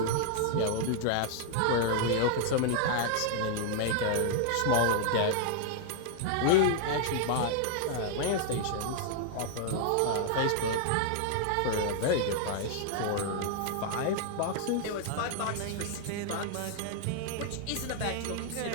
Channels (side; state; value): both; different; correlation 0.00